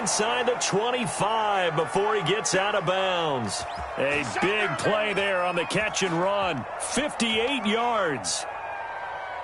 the 25 before he gets out of bounds. A big play there on the catch and run. 58 yards.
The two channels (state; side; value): identical; both; correlation 1.00